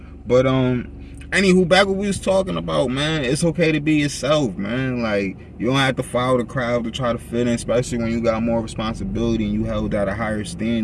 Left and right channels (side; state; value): both; identical; correlation 1.00